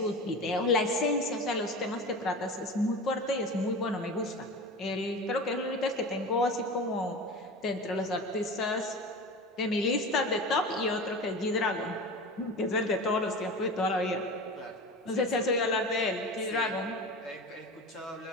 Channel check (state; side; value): normal; both; correlation 0.30